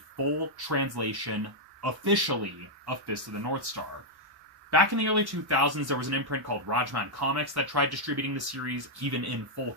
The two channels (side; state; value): left; late; 1.1 ms